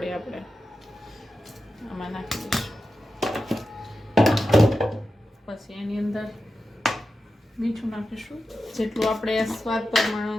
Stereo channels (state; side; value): normal; both; correlation 0.91